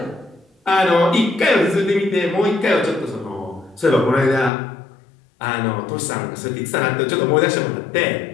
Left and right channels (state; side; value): drops out; right; at 4.5 s